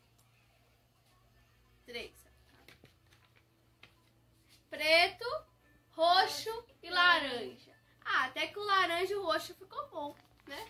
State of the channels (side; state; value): both; identical; correlation 1.00